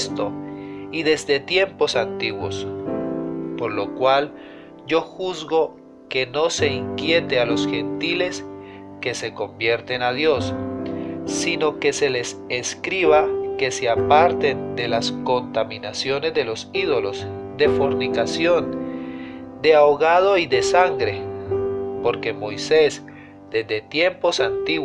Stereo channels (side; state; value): both; identical; correlation 1.00